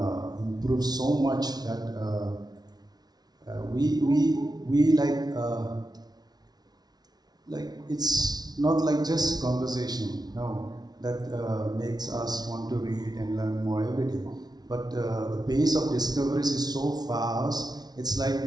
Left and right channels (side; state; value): left; late; 0.19 ms